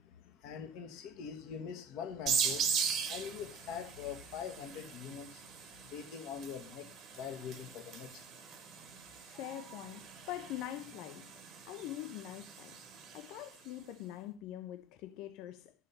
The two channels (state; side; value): normal; both; correlation 0.38